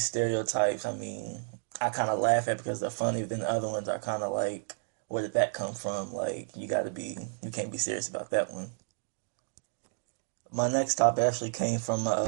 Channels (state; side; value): silent; left; digital silence